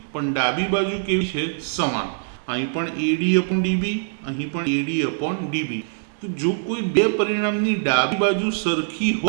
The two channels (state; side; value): silent; left; digital silence